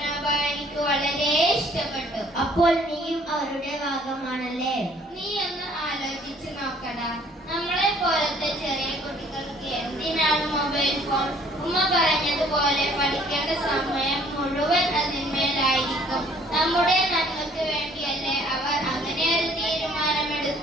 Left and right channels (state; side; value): normal; both; correlation 0.58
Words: എനിക്ക് വളരെ ഇഷ്ടപ്പെട്ടു. അപ്പോൾ നീയും അവരുടെ ഭാഗമാണല്ലേ? നീ ഒന്ന് ആലോചിച്ച് നോക്കടാ. നമ്മളെ പോലത്തെ ചെറിയ കുട്ടികൾക്ക് എന്തിനാണ് മൊബൈൽ ഫോൺ? ഉമ്മ പറഞ്ഞതുപോലെ പഠിക്കേണ്ട സമയം മുഴുവൻ അതിന്മേലായിരിക്കും. നമ്മുടെ നന്മക്ക് വേണ്ടിയല്ലേ അവർ അങ്ങനെ ഒരു